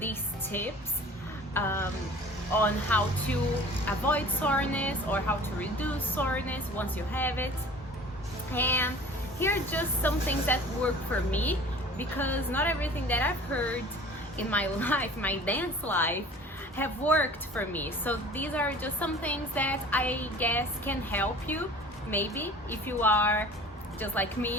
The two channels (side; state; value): both; normal; correlation 0.45